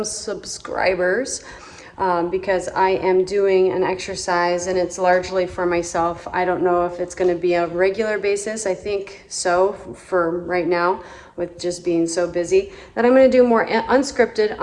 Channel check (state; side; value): identical; both; correlation 1.00